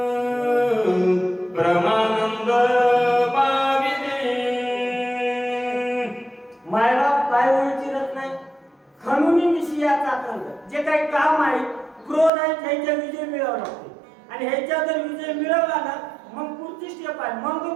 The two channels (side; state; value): left; drops out; at 12.3 s